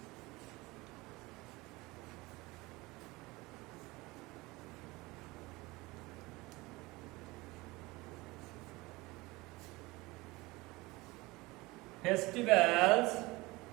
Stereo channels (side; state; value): left; quieter; 22.0 dB